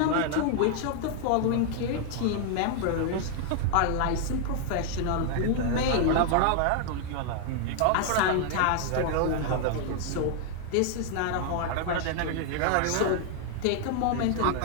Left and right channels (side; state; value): both; different; correlation 0.00